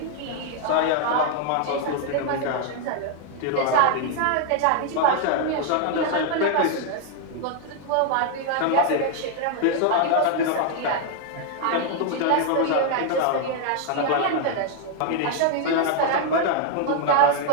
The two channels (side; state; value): both; different; correlation 0.00